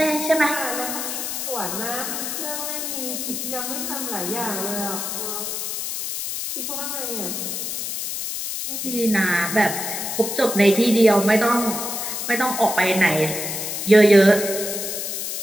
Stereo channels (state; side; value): noise; left; hiss, 4 dB below the sound